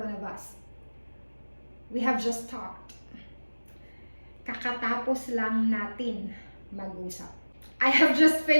of us. We have just talked. Kakatapos lang natin mag-usap. I have just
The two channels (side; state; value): both; inverted; correlation -1.00